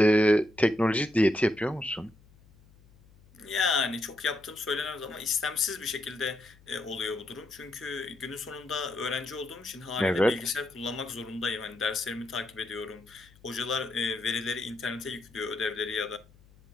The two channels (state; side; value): noise; left; hum, 26 dB below the sound